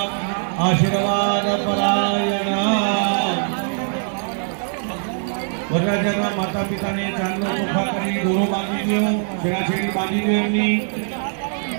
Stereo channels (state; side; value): silent; left; digital silence